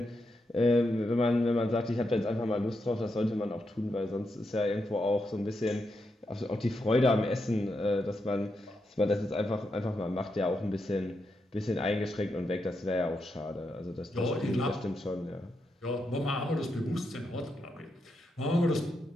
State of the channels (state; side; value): normal; both; correlation 0.84